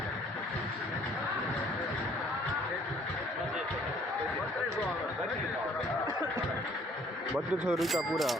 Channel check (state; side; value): normal; both; correlation 0.59